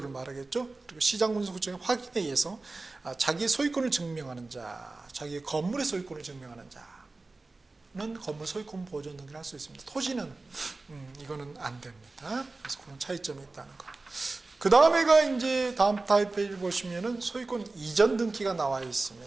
말하겠죠. 그리고 시장군수구청의 확인에 의해서 자기의 소유권을 증명하는 자, 자기의 건물의 소유권을 증명하는 자는 건물 소유권 보존 등기를 할 수 있습니다. 토지는 이거는 안 됩니다. 그래서 그런 차이점이 있다는 거. 그 다음에가 이제 다음 타입 페이지 보시면은 소유권 이전 등기가 나와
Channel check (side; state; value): left; quieter; 3.4 dB